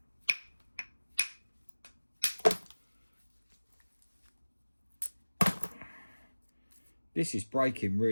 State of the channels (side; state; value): both; inverted; correlation -1.00